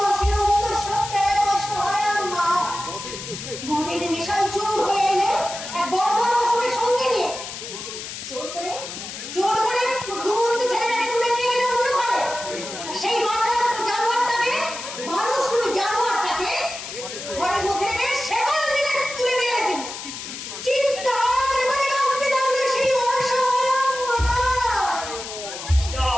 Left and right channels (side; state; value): left; noise; hiss, 9 dB below the sound